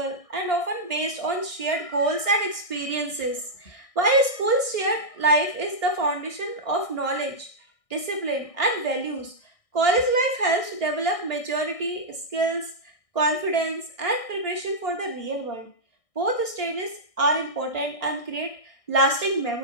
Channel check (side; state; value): right; late; 1.6 ms